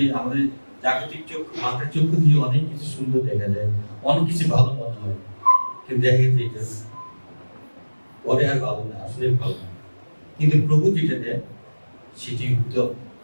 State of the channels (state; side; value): inverted; both; correlation -1.00